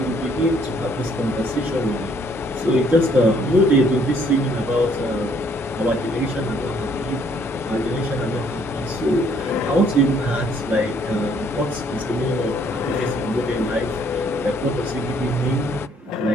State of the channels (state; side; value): normal; both; correlation 0.64